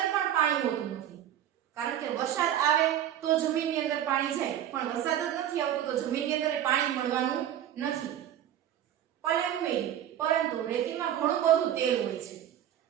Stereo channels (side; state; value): left; quieter; 11.0 dB